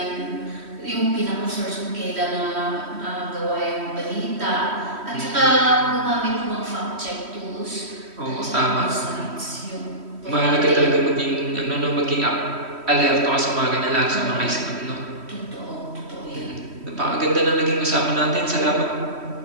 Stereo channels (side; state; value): left; late; 3.1 ms